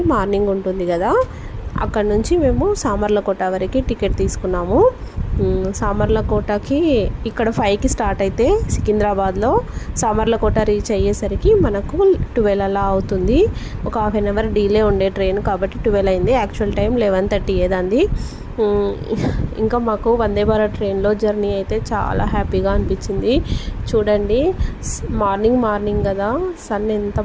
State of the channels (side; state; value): both; identical; correlation 1.00